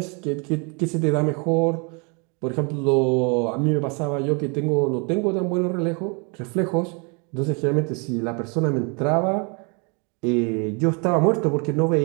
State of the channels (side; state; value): left; quieter; 34.4 dB